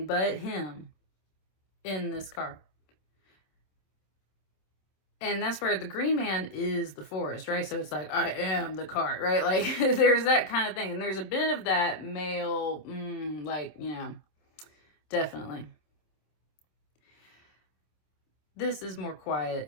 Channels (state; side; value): late; right; 26 ms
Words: but him in this card. And that's where the green man is the forest, right? So it's like, I am the cart, right? Like, there's that kind of thing. And there's a bit of that male, like, you know, definitely. This is more quiet